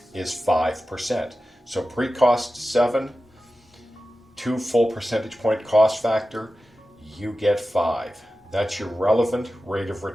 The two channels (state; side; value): normal; both; correlation 0.94